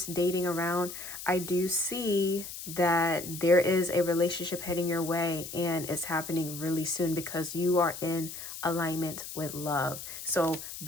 dating around, I do see that there is a relationship heading your way, and it's happening really soon because you are in alignment with love. So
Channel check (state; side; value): noise; left; hiss, 10 dB below the sound